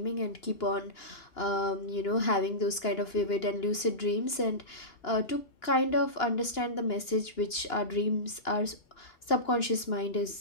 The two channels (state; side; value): late; right; 2.9 ms